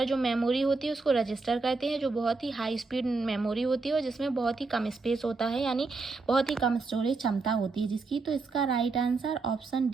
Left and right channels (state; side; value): quieter; left; 3.9 dB